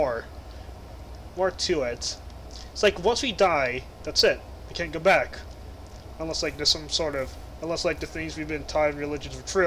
to it. It's like once we die, that's it. We can't go back, unless like there's some sort of, unless like the things we've been taught in religions are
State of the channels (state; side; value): identical; both; correlation 1.00